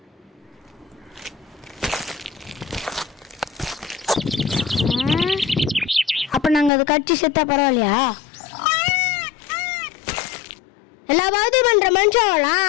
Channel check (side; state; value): right; drops out; at 6.7 s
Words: அப்ப நாங்க அது கட்சி செத்தா பரவாயில்லையா? எல்லா பாவத்தையும் பண்ற